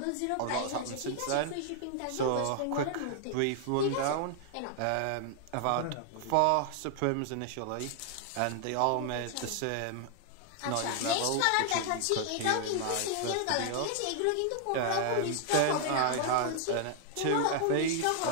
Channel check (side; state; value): both; different; correlation 0.00